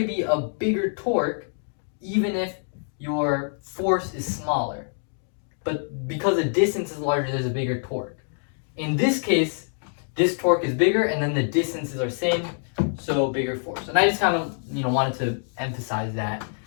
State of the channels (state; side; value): silent; right; 61 dB below the other